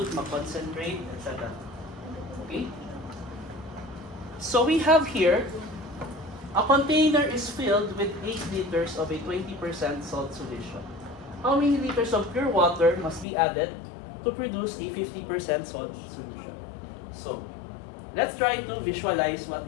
mag-concentrate, etc. Okay? So we have here, a container is filled with 8 liters of a 20% salt solution. How many liters of pure water must be added to produce a 50% salt solution? So, let's try to visualize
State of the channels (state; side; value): drops out; right; at 13.2 s